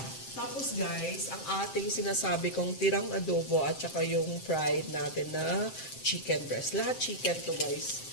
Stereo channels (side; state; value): right; late; 7.6 ms